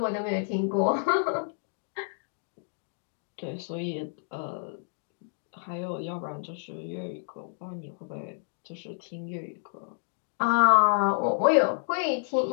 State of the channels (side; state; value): right; silent; digital silence